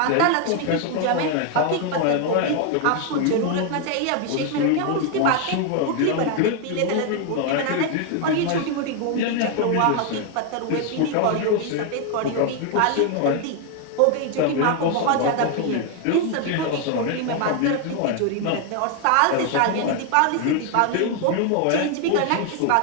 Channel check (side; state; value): both; different; correlation 0.01